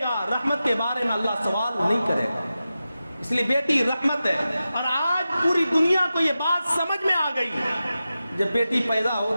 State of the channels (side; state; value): both; inverted; correlation -0.93